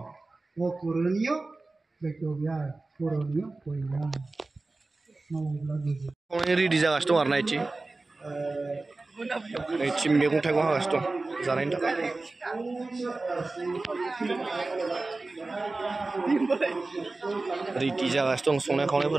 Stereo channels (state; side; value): quieter; left; 3.3 dB